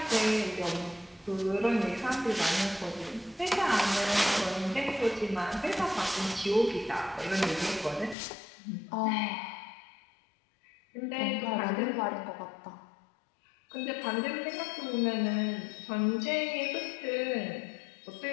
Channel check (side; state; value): right; drops out; at 8.2 s